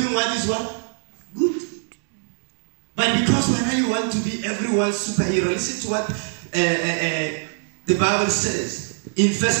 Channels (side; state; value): left; silent; 64 dB below the other